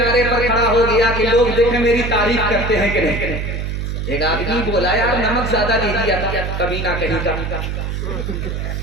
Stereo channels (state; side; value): noise; right; hum, 3 dB below the sound